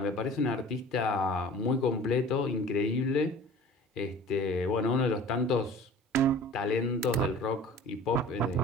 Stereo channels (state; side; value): normal; both; correlation 0.44